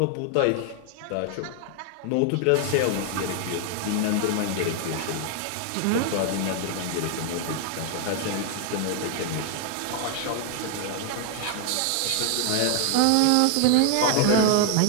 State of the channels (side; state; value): both; different; correlation 0.00